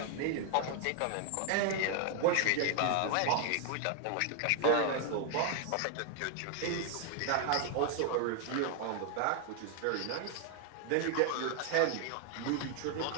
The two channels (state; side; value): different; both; correlation 0.00